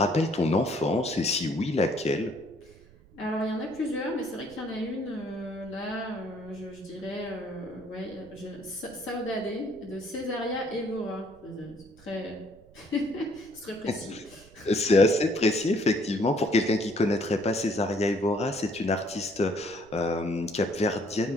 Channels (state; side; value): noise; right; rumble, 25 dB below the sound